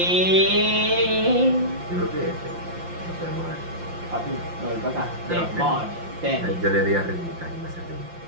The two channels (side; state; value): left; late; 5.8 ms